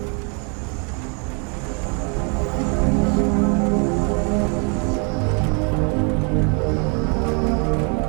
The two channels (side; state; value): left; quieter; 36.3 dB